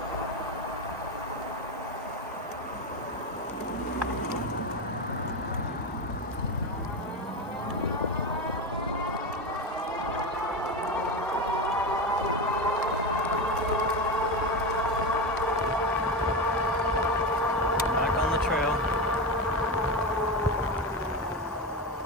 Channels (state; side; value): normal; both; correlation 0.17